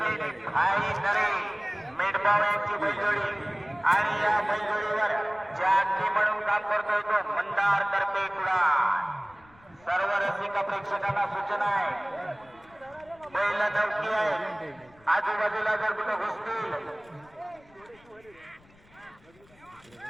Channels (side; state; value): left; noise; rumble, 28 dB below the sound